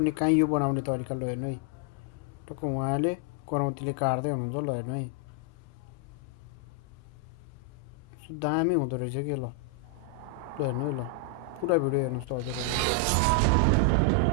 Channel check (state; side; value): different; both; correlation 0.00